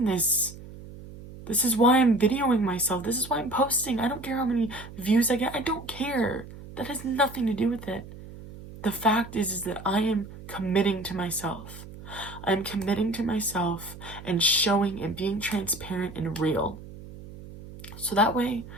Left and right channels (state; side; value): noise; right; hum, 15 dB below the sound